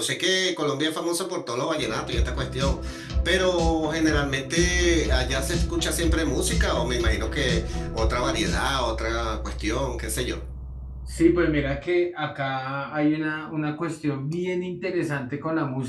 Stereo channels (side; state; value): both; identical; correlation 1.00